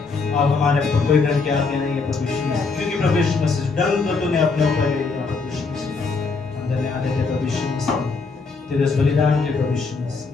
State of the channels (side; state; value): right; quieter; 4.4 dB